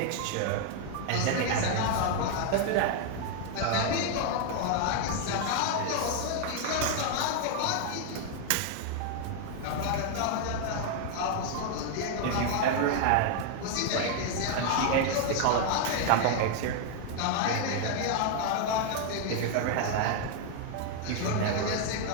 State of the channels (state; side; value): different; both; correlation 0.00